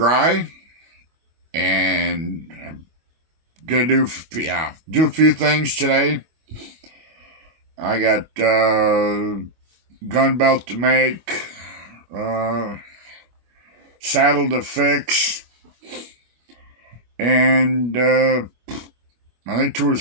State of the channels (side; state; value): left; late; 25 ms